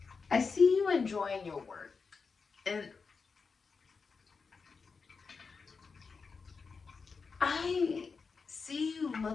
I see you enjoying your work, and I see you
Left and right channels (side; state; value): right; quieter; 5.0 dB